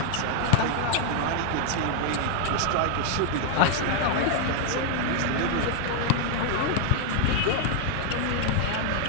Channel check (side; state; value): both; different; correlation 0.00